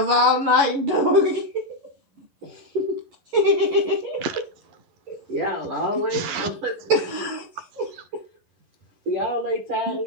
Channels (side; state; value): left; late; 11 ms